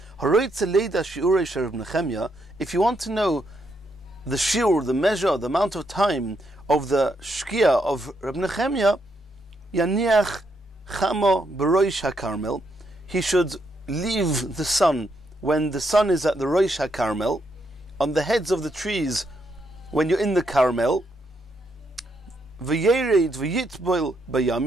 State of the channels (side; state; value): both; normal; correlation 0.78